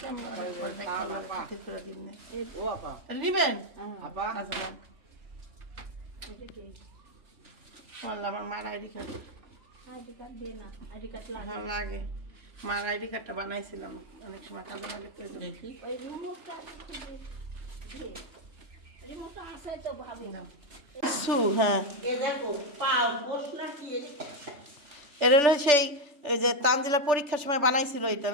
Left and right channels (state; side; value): late; left; 3.4 ms